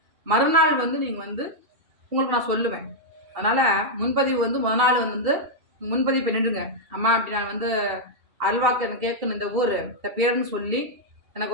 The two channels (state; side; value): late; left; 2.7 ms